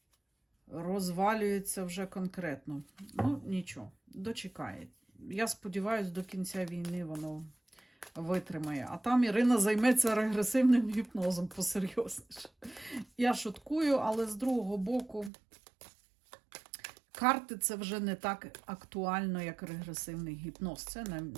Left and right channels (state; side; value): drops out; left; at 15.3 s